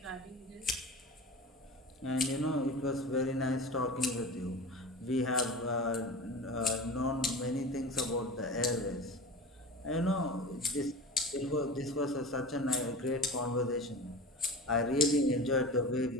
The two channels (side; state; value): both; normal; correlation 0.33